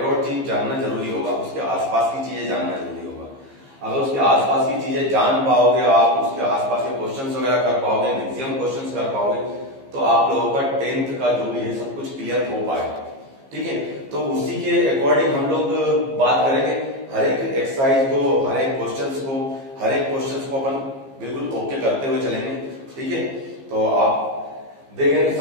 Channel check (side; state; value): left; late; 15 ms